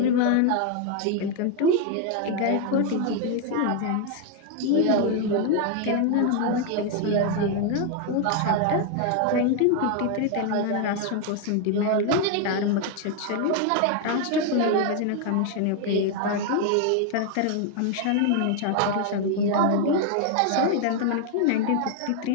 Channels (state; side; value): different; both; correlation 0.00